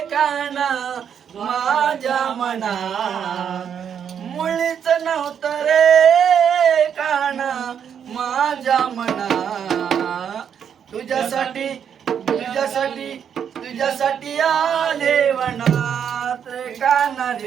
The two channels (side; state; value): left; quieter; 8.1 dB